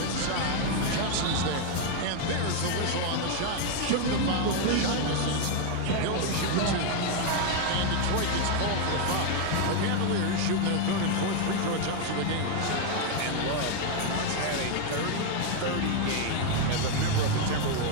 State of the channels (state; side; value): different; both; correlation 0.01